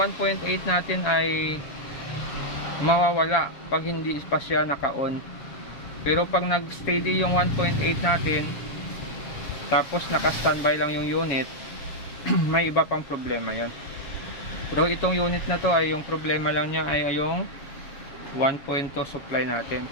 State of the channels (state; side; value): late; right; 7.2 ms